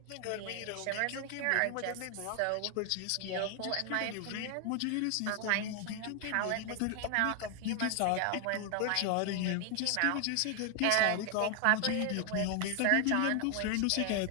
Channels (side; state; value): both; different; correlation 0.00